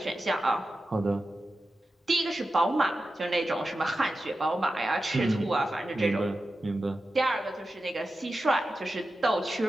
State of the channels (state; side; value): normal; both; correlation 0.92